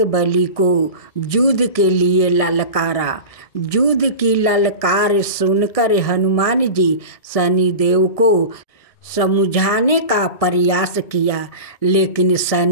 बली को युद्ध के लिए ललकारा। युद्ध की ललकार सुनकर हनुमान जी शनि देव को समझाने का प्रयास किया, लेकिन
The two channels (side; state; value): right; late; 1.7 ms